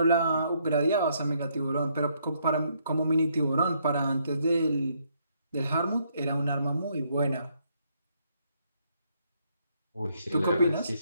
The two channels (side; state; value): both; inverted; correlation -0.72